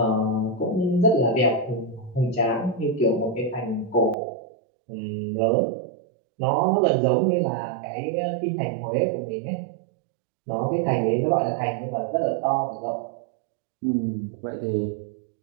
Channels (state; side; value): drops out; left; at 4.2 s